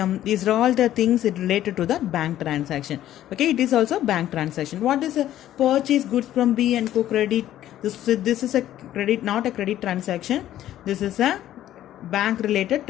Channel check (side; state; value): right; quieter; 12.7 dB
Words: these are all the things related to the bank transaction. Okay, it is also bank transaction. What is a purchase goods from B and Co credit? This is a credit, not a credit transaction. This is a bank related